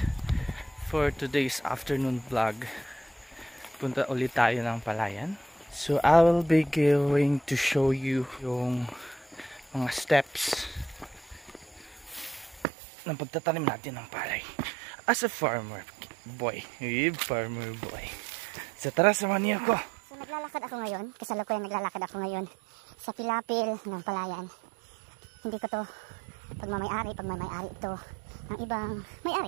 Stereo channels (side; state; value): left; drops out; at 12.7 s